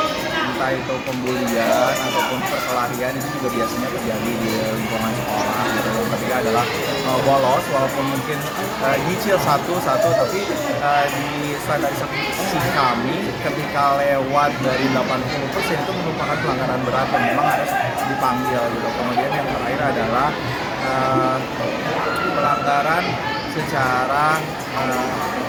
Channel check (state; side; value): identical; both; correlation 1.00